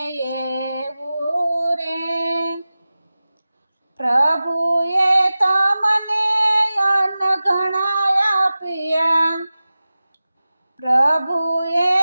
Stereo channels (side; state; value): both; inverted; correlation -0.96